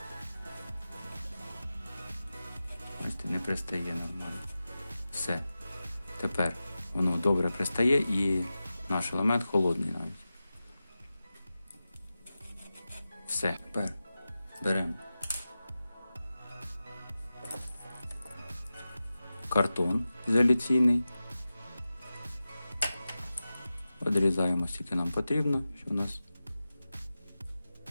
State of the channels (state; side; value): inverted; both; correlation -0.94